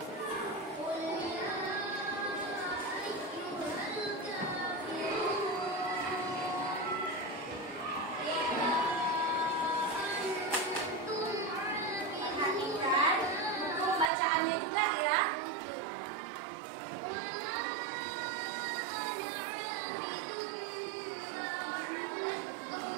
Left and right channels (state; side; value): drops out; left; at 14.1 s